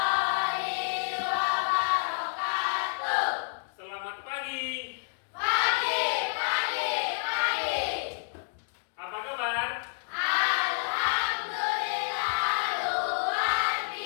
wabarakatuh. Selamat pagi. Pagi. Apa kabar? Alhamdulillah luar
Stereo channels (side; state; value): right; silent; digital silence